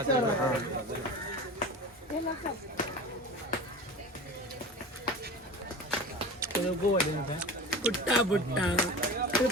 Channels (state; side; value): normal; both; correlation 0.33